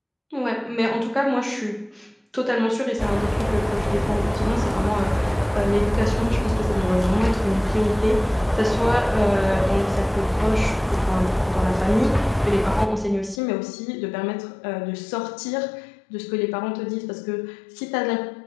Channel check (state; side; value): drops out; right; at 13.4 s